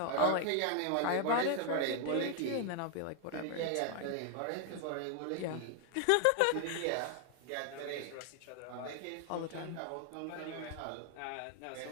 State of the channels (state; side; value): different; both; correlation 0.00